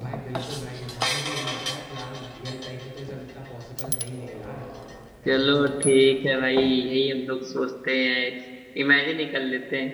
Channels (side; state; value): both; identical; correlation 1.00